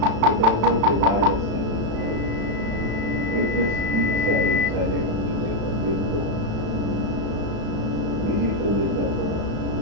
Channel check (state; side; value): late; left; 35 ms